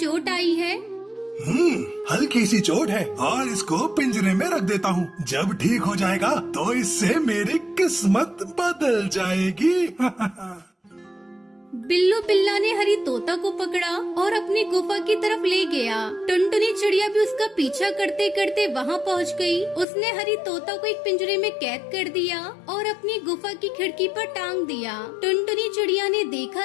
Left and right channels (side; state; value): right; drops out; at 19.9 s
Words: आई है। हल्की सी चोट है और इसको पिंजरे में रख देता हूँ। जब ठीक हो जाएगा तो इससे मेरी किस्मत बदल जाएगी। बिल्लू बिल्ला ने हरी तोता को पकड़ा और अपनी गुफा की तरफ ले गया। टुनटुनी चिड़िया भी उसका पीछा करते करते वहाँ पहुँच गई। उसने हरी तोता को एक पिंजरे में कैद कर दिया और अपनी गुफा की खिड़की पर टांग दिया। टुनटुनी चिड़िया ने